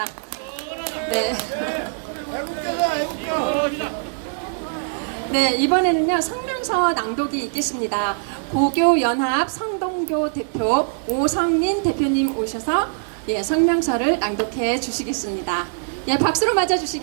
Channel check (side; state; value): left; silent; digital silence